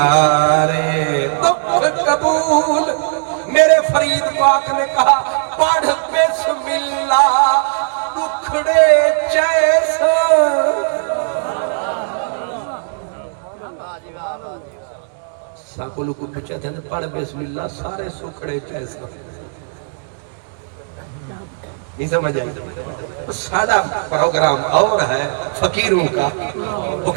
دکھ قبول. میرے فرید پاک نے کہا پڑھ بسم اللہ دکھڑے جیسا. ساکولوں کو پوچھا تھا پڑھ بسم اللہ سارے سکھڑے جیسا. نہیں سمجھ آئی. سارا پروگرام اور ہے فقیروں کا. وہ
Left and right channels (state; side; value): silent; left; 68 dB below the other